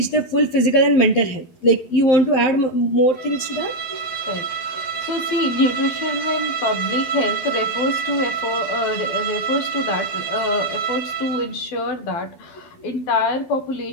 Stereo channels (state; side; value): late; right; 12 ms